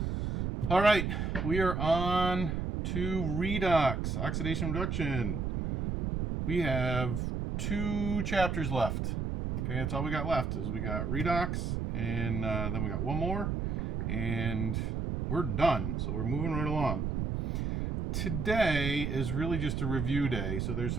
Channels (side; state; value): right; noise; rumble, 1 dB below the sound